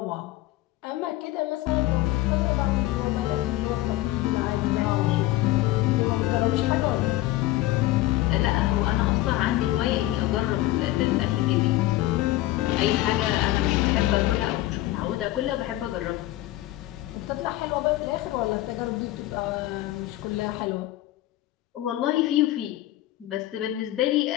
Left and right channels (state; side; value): quieter; right; 16.4 dB